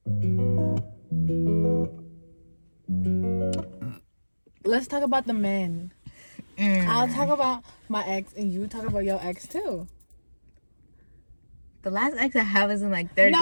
Let's talk about the men. I'll talk about my ex and you talk about your ex too. The last ex I have is in like third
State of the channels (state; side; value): inverted; both; correlation -1.00